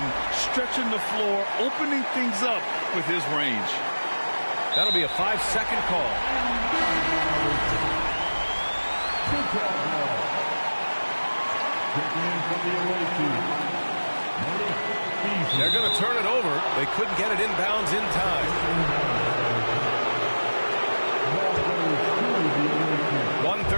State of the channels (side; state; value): both; inverted; correlation -1.00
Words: stretching the floor, opening things up with his range. That'll be a 5-second call. They're going to turn it over. They couldn't get it inbounds in time.